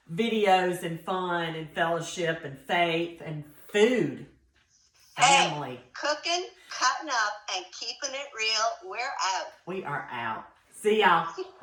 videos and fun and fellowship and faith and food. Family. Hey, cooking, cutting up, and keeping it real. We're out. We are out. See y'all.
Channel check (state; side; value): identical; both; correlation 1.00